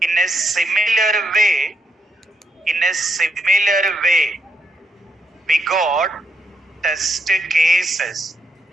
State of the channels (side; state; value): both; normal; correlation 0.79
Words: In a similar way, we got test cases.